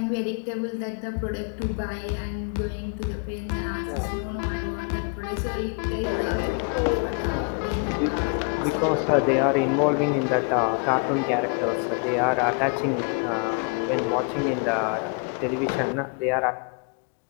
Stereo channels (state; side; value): quieter; right; 36.1 dB